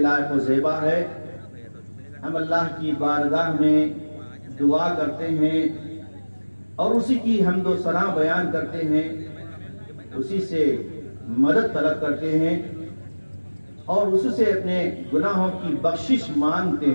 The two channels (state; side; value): inverted; both; correlation -1.00